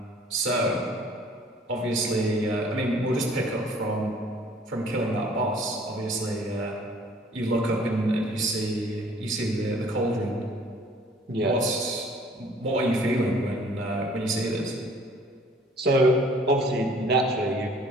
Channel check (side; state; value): both; normal; correlation 0.55